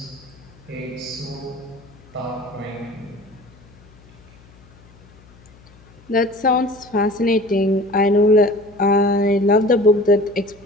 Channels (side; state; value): left; noise; hum, 26 dB below the sound